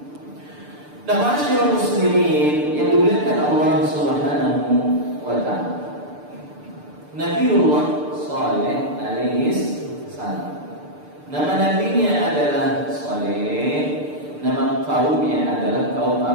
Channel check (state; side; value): late; left; 6.8 ms